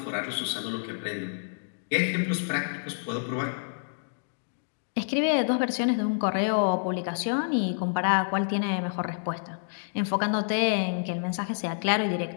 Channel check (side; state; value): right; silent; digital silence